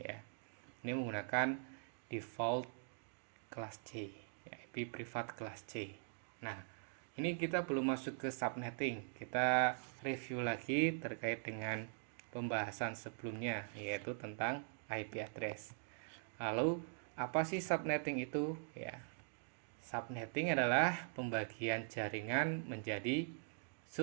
Ini menggunakan default kelas C, IP privat kelas C. Nah, ini kita belum masuk ke subnetting. Kita review lagi terkait dengan pembahasan sebelumnya, yaitu tentang IP address. Lalu apa sih subnetting itu ya? Subnetting adalah pembagian jaringan menjadi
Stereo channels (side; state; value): left; silent; digital silence